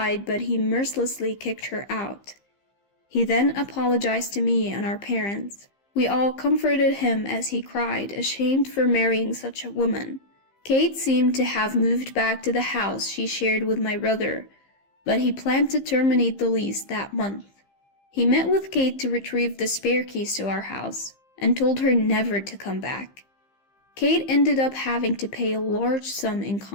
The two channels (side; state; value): right; late; 15 ms